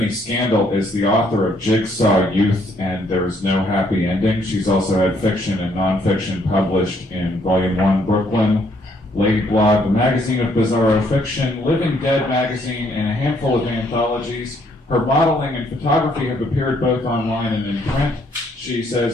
Scandal is the author of Jigsaw Youth and There Is No Happy Ending. She's also had fiction and nonfiction published in Volume 1, Brooklyn, Lady Blog, the Magazine of Bizarro Fiction, Living Dead magazine, and a handful of anthologies. Her modeling and photography have appeared both online and in print. She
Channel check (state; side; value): normal; both; correlation 0.68